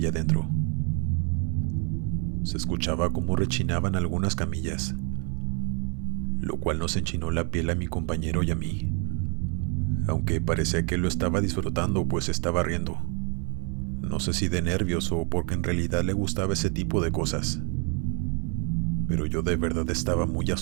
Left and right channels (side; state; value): left; quieter; 37.1 dB